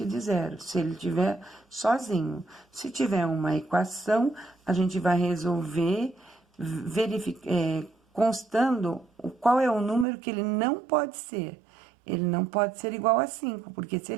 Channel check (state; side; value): drops out; left; at 10.1 s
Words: de zero, se ele tiver sozinho. Se tiver uma equação, a gente vai resolver constando qual é o número que ele não pode ser. Ele não pode ser igual a 5, porque se